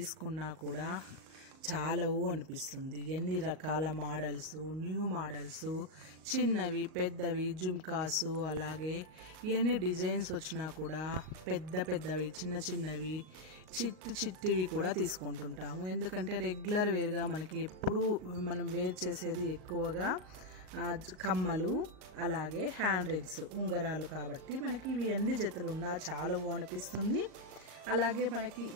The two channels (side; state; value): left; late; 38 ms